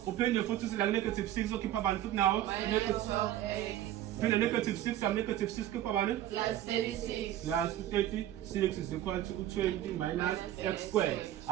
Uphinde futhi uthi la negative 6 okhipha bani futhi nawo negative. Phinde negative 6 from negative 6 khipha bani plus 36. Plus 36 is equal to 20 minus x squared.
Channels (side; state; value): left; quieter; 12.7 dB